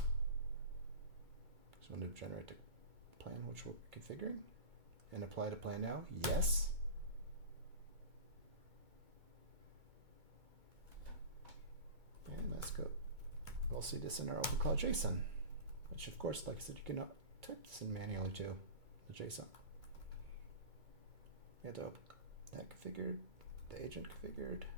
Just want to generate a plan which we're configuring. And apply to plan now. Yes. And let's go. We'll see this in our OpenClaw JSON, which of course, like I said, you cannot type this in manually too, the JSON. We have that configured, the agent configured,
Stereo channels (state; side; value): late; left; 2.3 ms